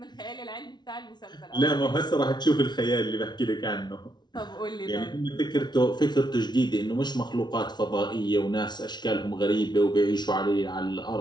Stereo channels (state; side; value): late; right; 0.20 ms